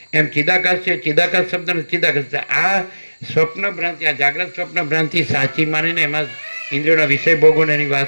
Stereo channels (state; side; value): inverted; both; correlation -1.00